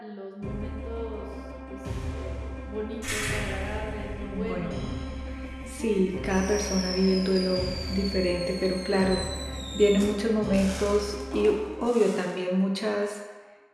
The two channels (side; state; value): both; identical; correlation 1.00